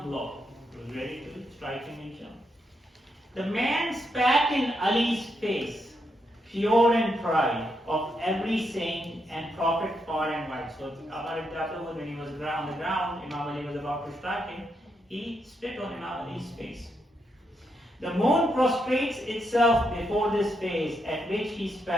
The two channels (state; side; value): normal; both; correlation 0.81